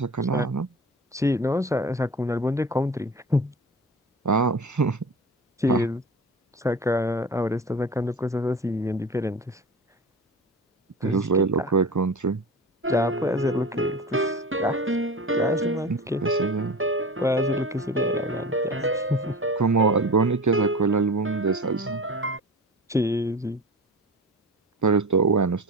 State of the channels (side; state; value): both; normal; correlation 0.33